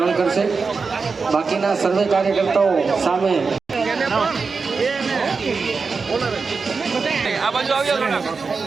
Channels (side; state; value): left; quieter; 4.7 dB